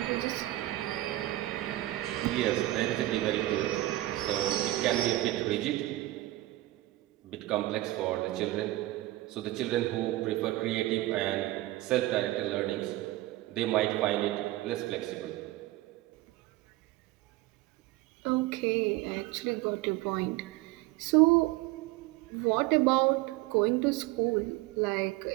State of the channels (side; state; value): left; quieter; 17.3 dB